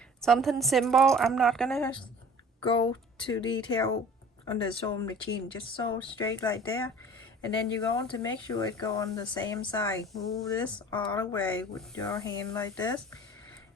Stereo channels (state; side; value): normal; both; correlation 0.45